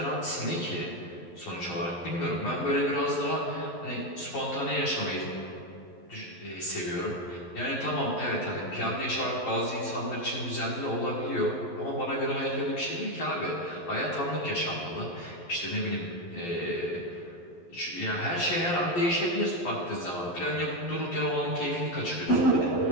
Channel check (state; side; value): late; right; 11 ms